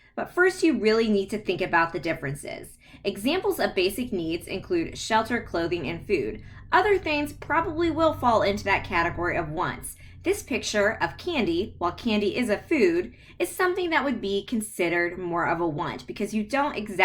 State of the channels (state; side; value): identical; both; correlation 1.00